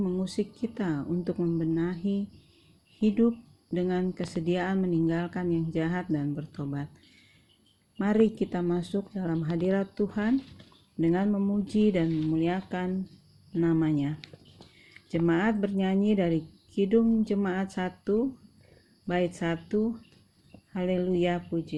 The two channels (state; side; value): identical; both; correlation 1.00